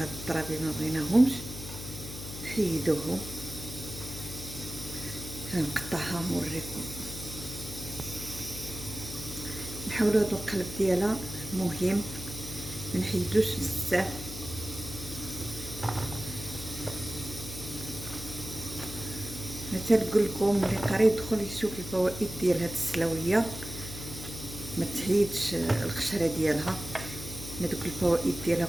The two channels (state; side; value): noise; left; hum, 10 dB below the sound